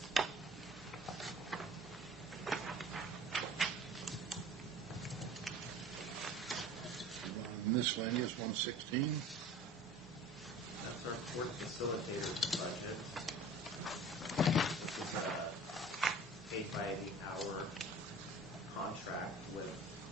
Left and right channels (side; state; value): both; normal; correlation 0.43